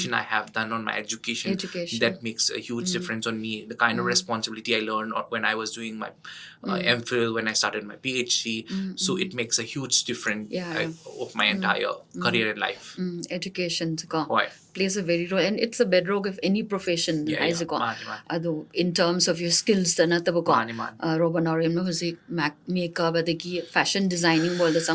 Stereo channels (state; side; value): identical; both; correlation 1.00